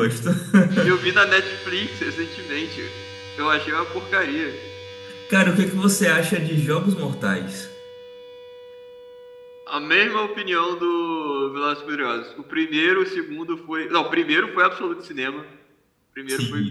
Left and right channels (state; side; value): identical; both; correlation 1.00